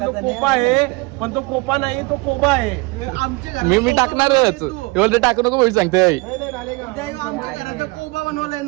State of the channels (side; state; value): left; quieter; 25.4 dB